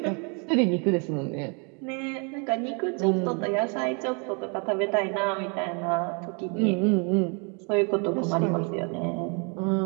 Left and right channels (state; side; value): quieter; left; 35.4 dB